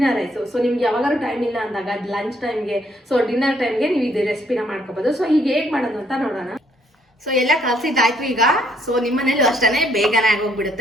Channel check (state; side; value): normal; both; correlation 0.68